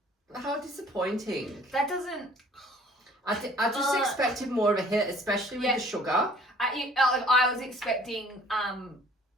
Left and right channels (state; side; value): normal; both; correlation 0.53